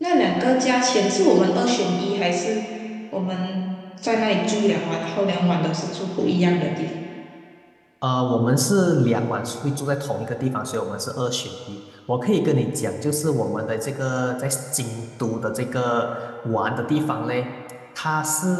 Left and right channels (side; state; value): both; identical; correlation 1.00